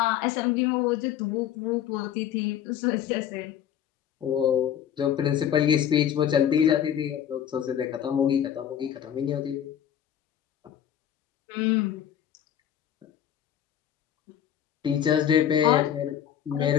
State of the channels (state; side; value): quieter; right; 9.9 dB